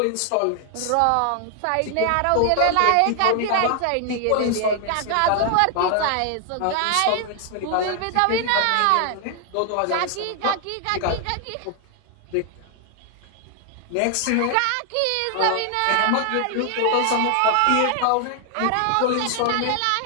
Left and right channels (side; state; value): both; different; correlation 0.00